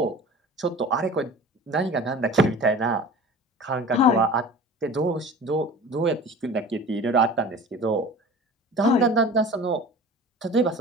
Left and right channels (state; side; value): normal; both; correlation 0.40